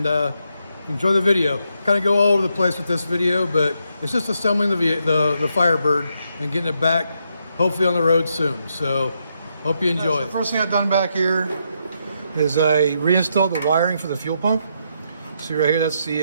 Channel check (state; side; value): inverted; both; correlation -0.79